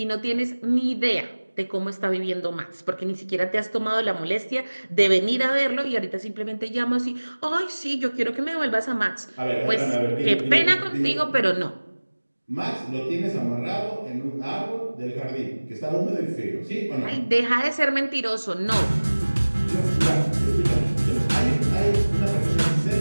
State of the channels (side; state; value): both; inverted; correlation -1.00